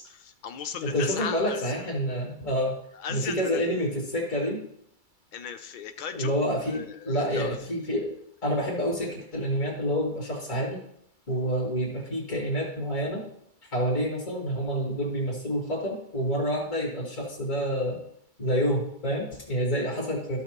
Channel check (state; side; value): late; right; 2.3 ms